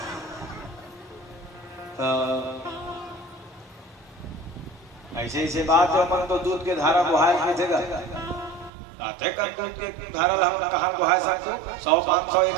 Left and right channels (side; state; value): left; drops out; at 8.7 s